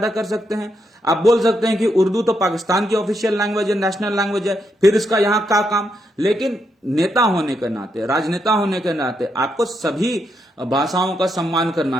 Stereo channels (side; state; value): both; normal; correlation 0.80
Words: कर सकते हैं। आप बोल सकते हैं कि उर्दू तो पाकिस्तान की ऑफिशियल लैंग्वेज है, नेशनल लैंग्वेज है, फिर इसका यहां क्या काम। लेकिन नेता होने के नाते, राजनेता होने के नाते आपको सभी भाषाओं का सम्मान करना